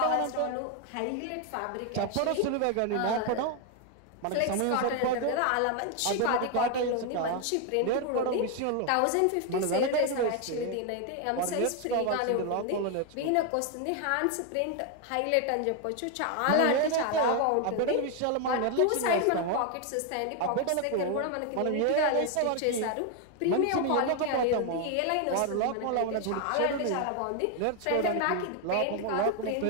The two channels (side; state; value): both; different; correlation 0.01